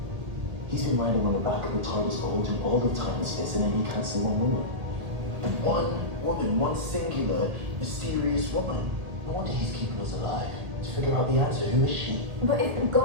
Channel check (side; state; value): left; late; 1.9 ms